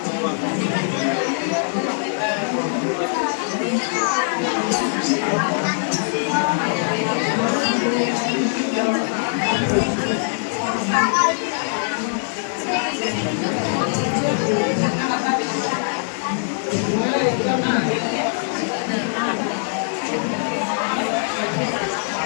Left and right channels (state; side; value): silent; right; digital silence